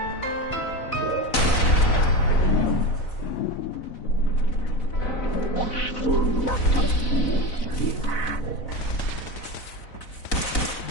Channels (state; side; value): late; right; 4.0 ms